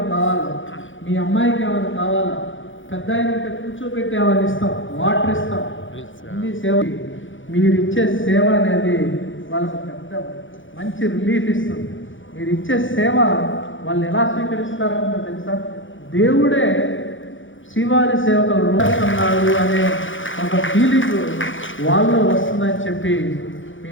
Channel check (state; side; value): late; right; 0.56 ms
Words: కావాలా, మీ అమ్మాయికి ఏమైనా కావాలా, పెద్ద అయినంటే కూర్చోబెట్టి ఏమైనా ఇస్తాం, వాటర్ ఇస్తాం. అన్ని సేవ మీరు ఇచ్చే సేవ అనేది వాళ్ళకి పెద్ద మంచి రిలీఫ్ ఇస్తుంది. మీరు ఇచ్చే సేవ వాళ్ళు ఎలా స్వీకరిస్తారంటే తెలుసా, దేవుడే శ్రీవారి సేవకులు రోజున్నాడు అనే ఒక ఫీలింగ్ వాళ్ళు వస్తుందని చెప్పి మీ